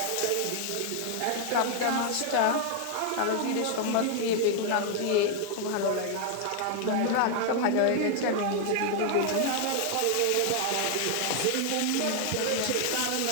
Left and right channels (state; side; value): different; both; correlation 0.00